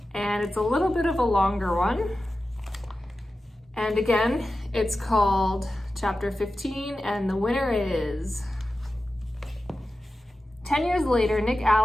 and it's a little bit of a longer one. And again, it's called chapter 15, and the winner is... 10 years later, Nick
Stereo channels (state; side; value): normal; both; correlation 0.93